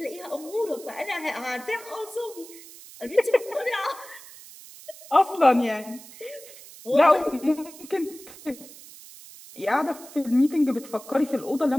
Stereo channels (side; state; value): right; noise; hiss, 18 dB below the sound